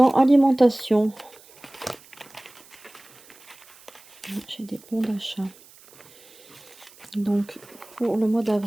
alimentation, j'ai des bons d'achat. Donc pour le mois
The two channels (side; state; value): right; noise; hiss, 24 dB below the sound